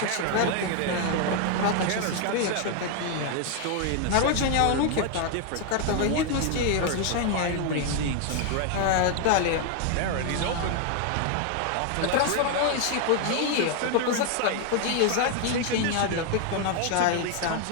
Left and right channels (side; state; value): both; different; correlation 0.00